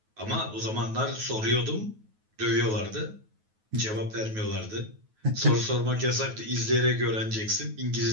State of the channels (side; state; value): left; late; 9.3 ms